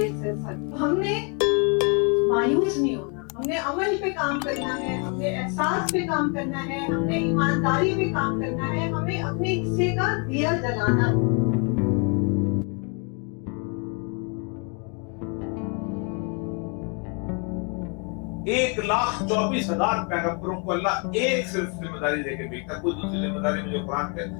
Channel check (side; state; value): right; quieter; 36.2 dB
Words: ہے۔ ہم نے مایوس نہیں ہونا، ہم نے عمل پہ کام کرنا ہے، ہم نے احساس پہ کام کرنا ہے، ہم نے ایمانداری پہ کام کرنا ہے، ہمیں اپنے حصے کا دیا جلانا ہے۔ 1,24,000 پیغمبروں کو اللہ ایک صرف ذمہ داری دے کے بھیجتا ہے، کوئی دوسری ذمہ داری مجھے قرآن کے